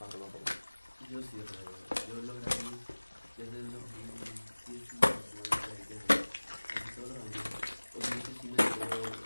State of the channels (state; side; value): inverted; both; correlation -1.00